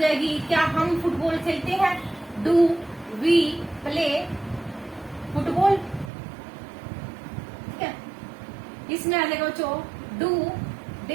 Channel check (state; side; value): drops out; left; at 6.1 s